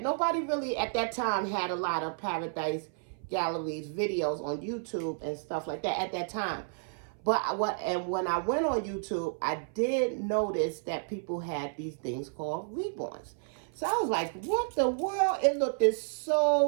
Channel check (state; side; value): silent; left; 57 dB below the other